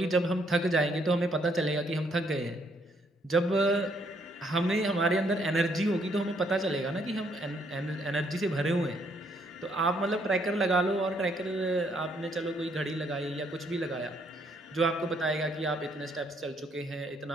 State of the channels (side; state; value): both; normal; correlation 0.70